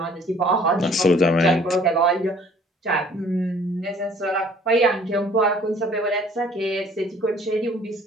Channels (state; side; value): normal; both; correlation 0.55